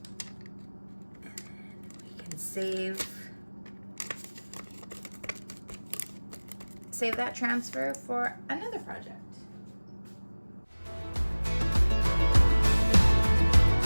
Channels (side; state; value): both; inverted; correlation -1.00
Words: then we can save that transfer for another project.